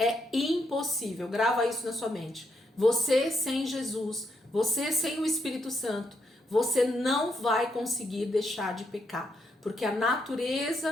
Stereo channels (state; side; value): normal; both; correlation 0.78